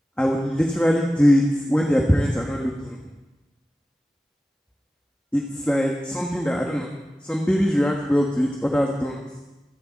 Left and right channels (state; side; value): normal; both; correlation 0.94